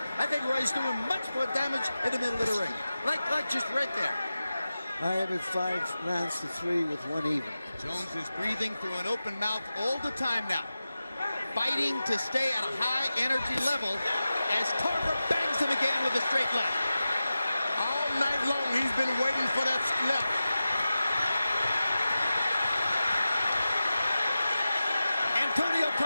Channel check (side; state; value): both; inverted; correlation -0.94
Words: I think Roy's doing much more damage in the middle of the ring, like just right there. I have it 5 rounds to 3 with 1 even. Jones is breathing through an open mouth all the time now, fighting to stay at a high energy level as Tarver bangs him again with a straight left. All night long he's been waiting for that left. Antonio